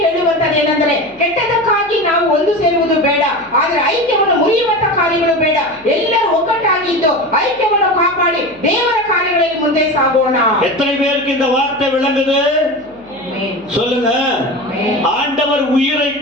ಹೇಳುವಂತದೇನೆಂದರೆ, ಕೆಟ್ಟದಕ್ಕಾಗಿ ನಾವು ಒಂದು ಸೇರುವುದು ಬೇಡ, ಆದ್ರೆ ಐಕ್ಯವನ್ನು ಮುರಿಯುವಂತ ಕಾರ್ಯಗಳು ಬೇಡ. ಎಲ್ಲರೂ ಒಗ್ಗಟ್ಟಾಗಿದ್ದು ஐக்கியವನ್ನು காப்பாடி தேவர காரியங்களில் ಮುಂದೆ சாಗೋಣ. எத்தனை பேருக்கு இந்த வார்த்தை விளங்குது? சொல்லுங்க. ஆண்டவர் உயிரை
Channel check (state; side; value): noise; left; hum, 30 dB below the sound